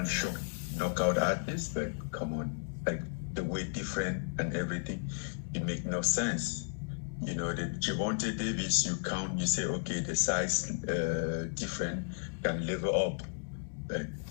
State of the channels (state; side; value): silent; right; digital silence